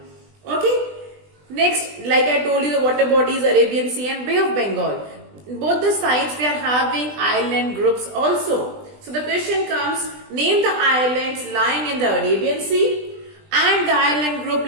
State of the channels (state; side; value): late; left; 20 ms